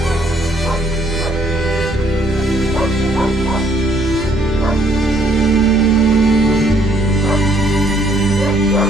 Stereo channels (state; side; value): noise; right; rumble, 12 dB below the sound